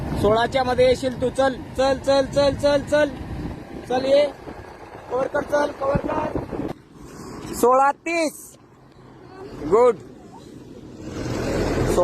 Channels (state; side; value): identical; both; correlation 1.00